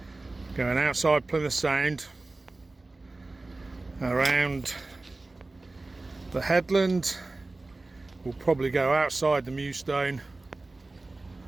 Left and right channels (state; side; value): quieter; left; 3.2 dB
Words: going outside Plymouth Sound, around the headland, we'll probably go outside the Mewstone,